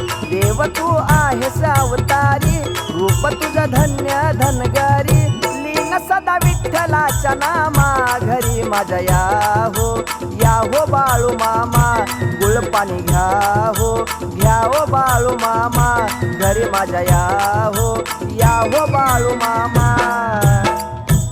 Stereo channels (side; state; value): both; identical; correlation 1.00